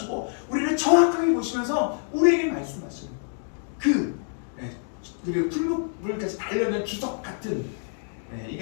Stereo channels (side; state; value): right; silent; 61 dB below the other